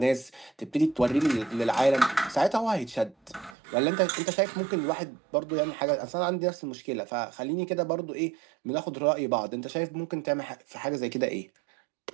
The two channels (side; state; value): left; drops out; at 3.6 s